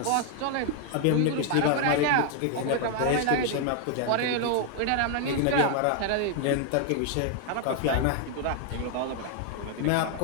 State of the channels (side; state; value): both; different; correlation 0.00